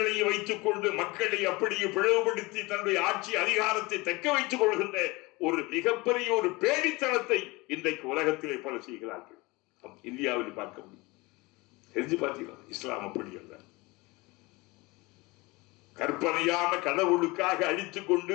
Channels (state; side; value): quieter; right; 23.6 dB